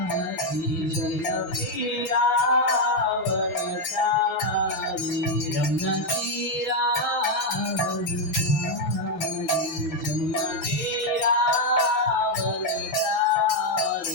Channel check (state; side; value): late; right; 7.4 ms